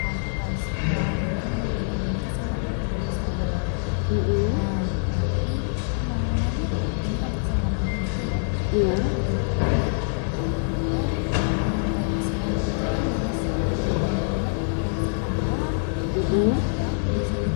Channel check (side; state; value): right; silent; 62 dB below the other